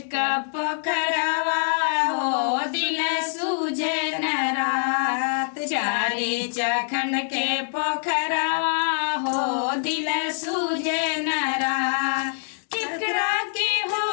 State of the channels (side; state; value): right; silent; digital silence